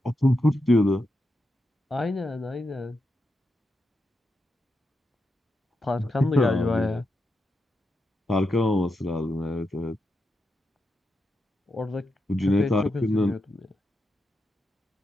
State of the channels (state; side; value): normal; both; correlation 0.86